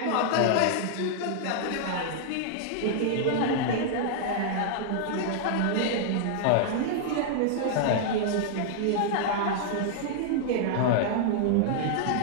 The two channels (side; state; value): both; different; correlation -0.01